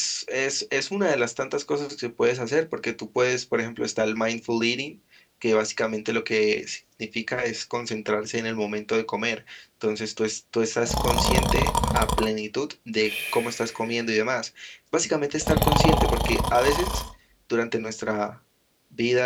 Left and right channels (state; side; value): identical; both; correlation 1.00